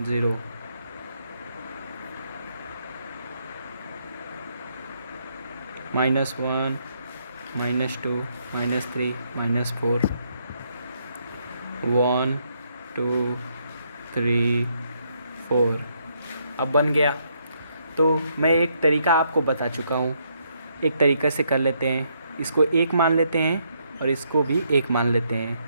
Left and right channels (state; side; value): inverted; both; correlation -0.74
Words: 0 -1 -2 -3 -4 1 2 3 4। अब बन गया। तो मैं एक तरीका आपको बता चुका हूँ, एक तरीके से कर लेते हैं। इसको 1 मान लेते हैं और इसको भी 1 मान लेते हैं,